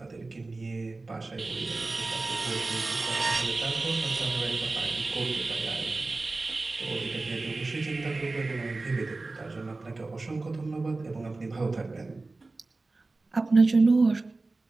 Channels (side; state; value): left; quieter; 3.4 dB